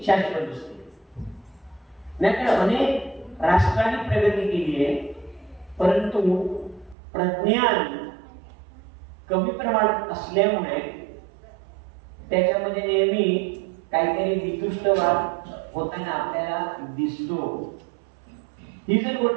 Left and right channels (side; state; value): left; drops out; at 7.0 s